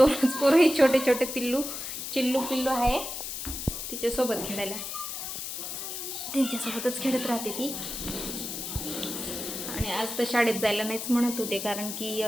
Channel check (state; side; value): noise; left; hiss, 6 dB below the sound